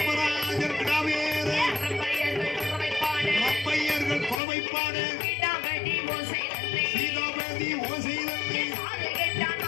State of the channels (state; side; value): drops out; right; at 4.4 s